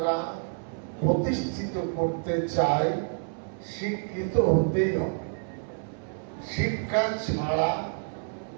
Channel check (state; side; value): silent; left; 59 dB below the other